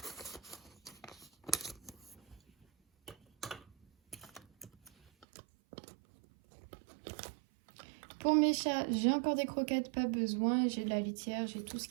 Pour mes chats, j'ai encore des croquettes, pas besoin. J'ai de la litière, j'ai tout ce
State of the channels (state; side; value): drops out; left; at 5.2 s